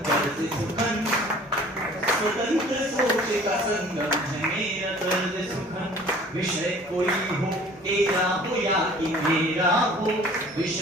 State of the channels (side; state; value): both; normal; correlation 0.49